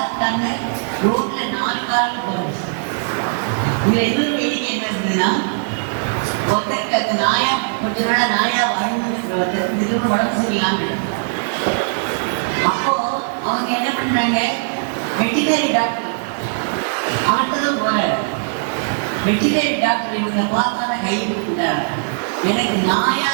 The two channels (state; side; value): silent; left; 66 dB below the other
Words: இருக்காங்க. ரோட்ல 4 காலில் போகிறது. இதுல எதுவும் வேடிக்கை என்ன இருந்ததுன்னா, ஒருத்தருக்கு அந்த நாயா கொஞ்ச நாளா நாயா வாழ்ந்துருக்கிற ஒருத்தருக்கு திடீர்னு உடம்பு சரியில்லாம. அப்போ அவங்க என்ன பண்றாங்க, வெட்டினரி டாக்டர் அவர்கிட்டதான் போறாரு. வெட்டினரி டாக்டர் இவங்க பார்த்தான கை கொடுத்துட்டாரு. எனக்கு